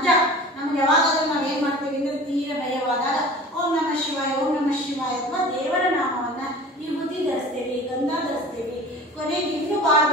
ನಮ್ಗೆ ಯಾವಾಗಾದ್ರೂ ನಾವ್ ಏನ್ ಮಾಡ್ತೀವಿ ಅಂದ್ರೆ ತೀರ ಭಯವಾದಾಗ ಓಂ ನಮಃ ಶಿವಾಯ, ಓಂ ನಮಃ ಶಿವಾಯ ಅಥವಾ ದೇವರ ನಾಮವನ್ನ ವಿಭೂತಿ ಧರಿಸ್ತೇವೆ, ಗಂಧ ಧರಿಸ್ತೇವೆ. ಕೊನೆಗೆ ಇನ್ನೂ ಬಾಳ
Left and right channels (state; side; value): normal; both; correlation 0.40